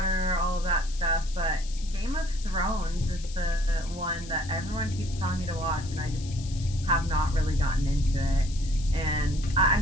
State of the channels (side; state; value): left; noise; hiss, 16 dB below the sound